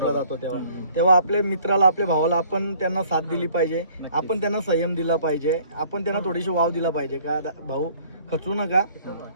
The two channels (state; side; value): inverted; both; correlation -0.57